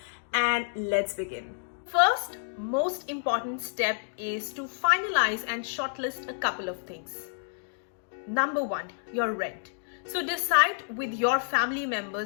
and let's begin. First, most important step is to finalize and shortlist a couple of things. Number one, your rent. So decide with your family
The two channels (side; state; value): right; silent; digital silence